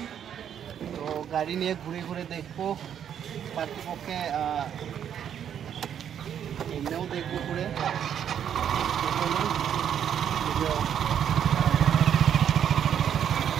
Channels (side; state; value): left; quieter; 9.0 dB